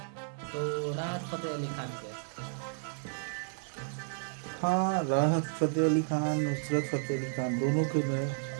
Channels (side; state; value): left; silent; digital silence